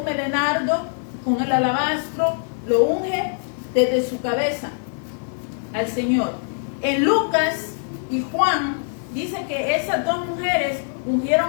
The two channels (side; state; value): right; silent; digital silence